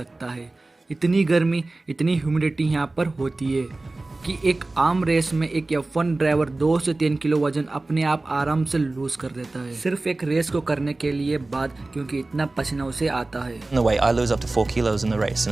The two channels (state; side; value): quieter; left; 3.1 dB